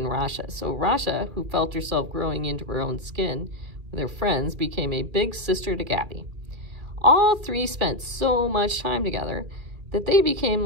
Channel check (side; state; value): left; late; 2.3 ms